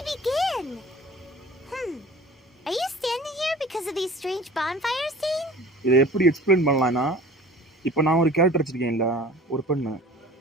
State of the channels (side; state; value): both; normal; correlation 0.43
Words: begin? Are you standing here because of these strange bonfires, Dane? இதை எப்படி எக்ஸ்பிளைன் பண்ணலாம்னா, இப்போ நான் ஒரு கேரக்டர் வச்சிருக்கேன்ல, ஒரு பெண்ணு.